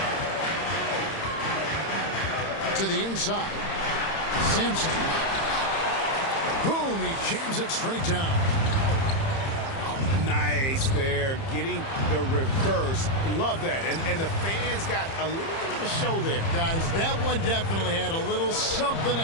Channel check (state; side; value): late; right; 30 ms